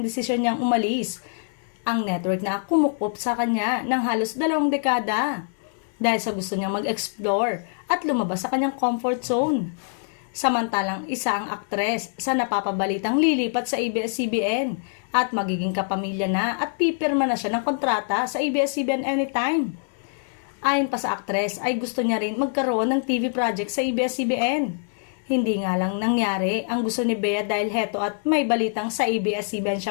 desisyon niyang umalis. Ang network na kumukup sa kanya ng halos 2 dekada dahil sa gusto niyang mag-explore at lumabas sa kanyang comfort zone. Samantalang isa ang aktres sa napapabalitang lilipat sa ABS-CBN at magiging kapamilya na at pipirma na siya ng kontrata sa ABS-CBN anytime. Ayon pa sa aktres ay gusto niya rin magkaroon ng TV project sa ABS-CBN. Hindi nga lang nangyari ang gusto ni Bea dahil heto at may balitang sa ABS-CBN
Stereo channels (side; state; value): right; silent; 62 dB below the other